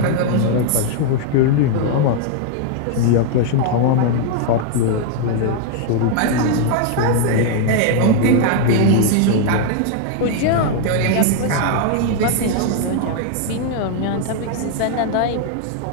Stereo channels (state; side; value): different; both; correlation 0.00